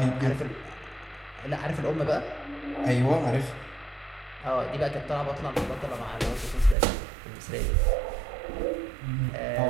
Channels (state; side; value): drops out; left; at 6.8 s